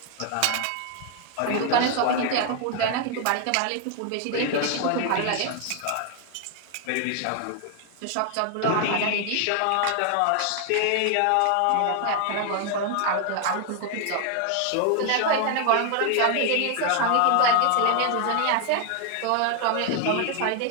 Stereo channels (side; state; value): both; different; correlation 0.00